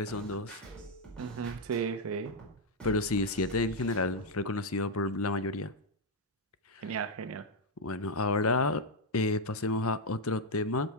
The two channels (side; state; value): both; normal; correlation 0.00